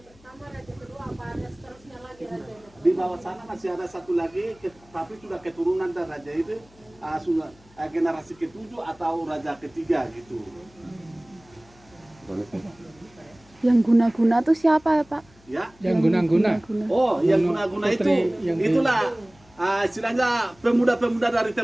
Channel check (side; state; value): left; noise; hum, 28 dB below the sound